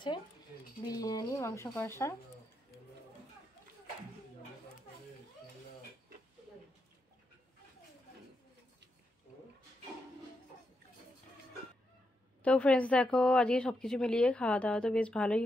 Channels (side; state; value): both; normal; correlation 0.84